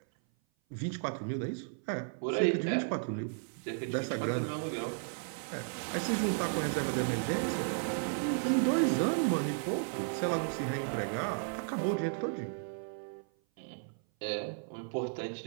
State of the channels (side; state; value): left; silent; 55 dB below the other